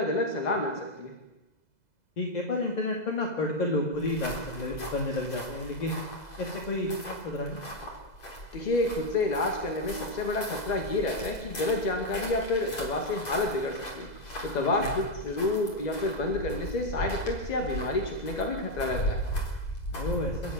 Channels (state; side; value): late; right; 2.0 ms